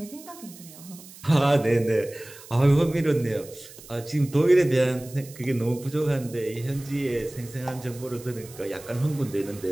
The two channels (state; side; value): noise; right; hiss, 19 dB below the sound